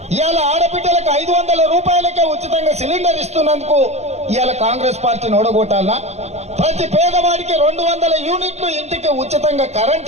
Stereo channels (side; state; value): left; late; 0.32 ms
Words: ఇవాళ ఆడబిడ్డలకు 500 రూపాయలకే ఉచితంగా సిలిండర్ ఇస్తున్నందుకు ఇవాళ కాంగ్రెస్ పార్టీని ఓడగొట్టాలనా? ప్రతి పేదవాడికి 200 యూనిట్లు ఇంటికి ఉచితంగా